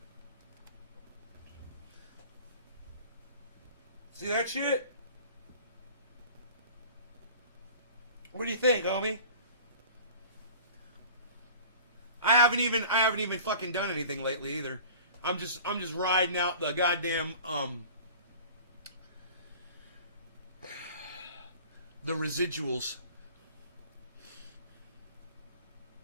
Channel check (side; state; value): both; inverted; correlation -0.44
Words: See that shit? What do you think, homie? I haven't even fucking done anything lately either. I'm just riding out the goddamn the residuals.